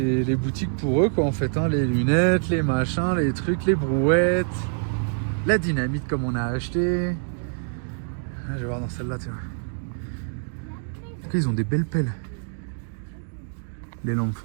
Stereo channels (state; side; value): silent; left; digital silence